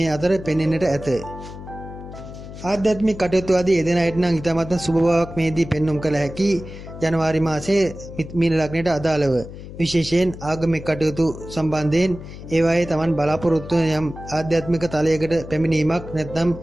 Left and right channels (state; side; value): noise; left; hum, 13 dB below the sound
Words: අතර පෙනෙන්නට ඇත. ආධ්‍යාත්මික කටයුතු ආදී යෙදෙන අයට නම් ඉතාමත් සුබ බවක් මේදී පෙන්눔 කළ හැකි. ජනවාරි මාසයේ මීන ලග්නයට අදාළව විශේෂයෙන් ආගමික කටයුතු සම්බන්ධයෙන් ඒවායේ තමන් බලාපොරොත්තු වන යම් ආධ්‍යාත්මික තලයකට පැමිණීමක් නැත්නම්